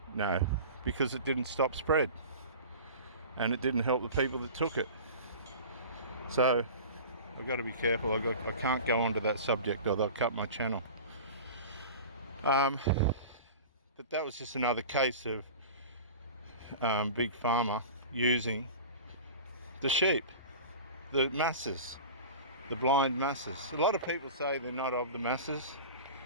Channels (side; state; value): both; inverted; correlation -0.36